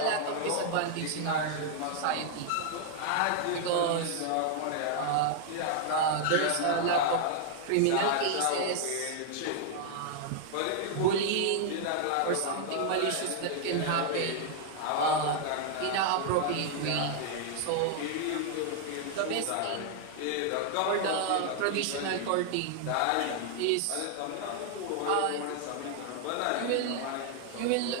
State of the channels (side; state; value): both; different; correlation 0.00